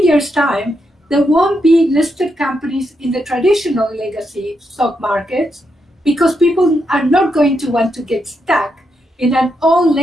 years' time, there won't be listed companies in the traditional legacy stock markets, because people are not going to want to get stuck in an old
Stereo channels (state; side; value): normal; both; correlation 0.82